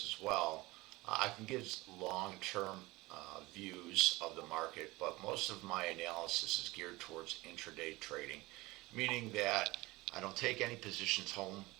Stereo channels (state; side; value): quieter; left; 21.0 dB